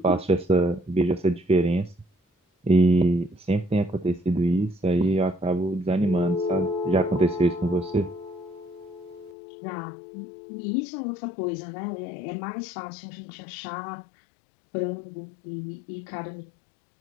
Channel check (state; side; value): drops out; right; at 9.3 s